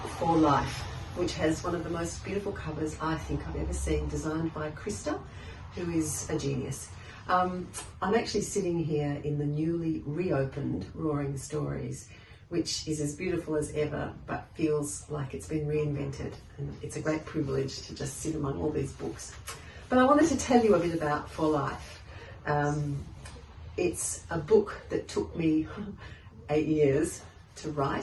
For Life, which has one of the most beautiful covers I think I've ever seen, designed by Krista, who is a genius. I'm actually sitting here in the newly reopened Roaring Stories, which is as beautiful as ever, but feels like it's been reinvented. And it's a great privilege to just sit among all these books. But I wanted to tell you a bit about For Life. It's a book that took me 8 years to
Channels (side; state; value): both; identical; correlation 1.00